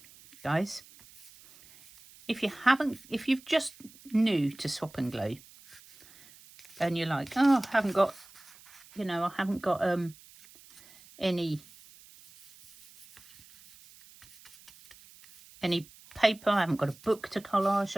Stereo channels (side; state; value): right; noise; hiss, 23 dB below the sound